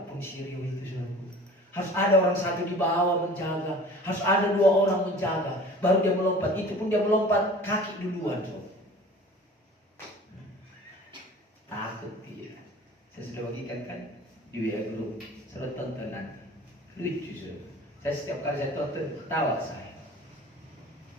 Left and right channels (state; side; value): normal; both; correlation 0.44